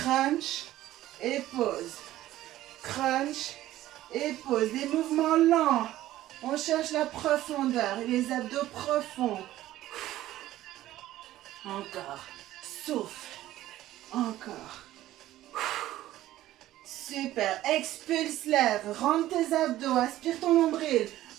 et pause. Crunch et pause. Des mouvements lents. On cherche la profondeur. Les abdos profonds. Encore. Souffle. Encore. Super. Expulse l'air. Rentre tes abdos. Aspire ton nombril.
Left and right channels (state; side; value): quieter; left; 14.6 dB